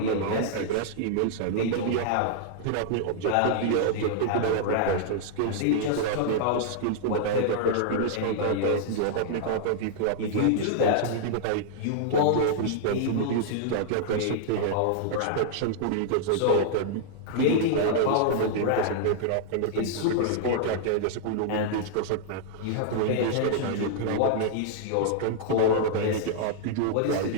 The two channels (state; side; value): different; both; correlation -0.01